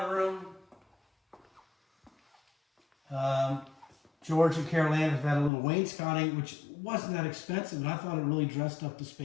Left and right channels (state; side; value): drops out; right; at 5.5 s